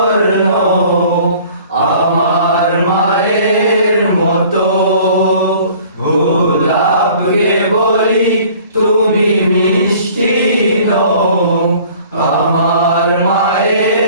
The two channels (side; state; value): both; inverted; correlation -0.51